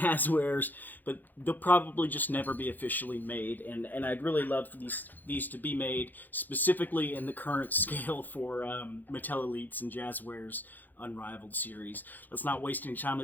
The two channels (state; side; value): late; right; 0.086 ms